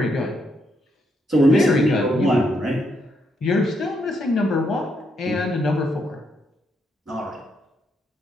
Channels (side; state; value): both; normal; correlation 0.78